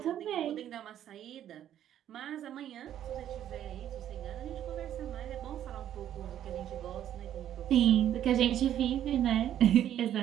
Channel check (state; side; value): quieter; left; 10.9 dB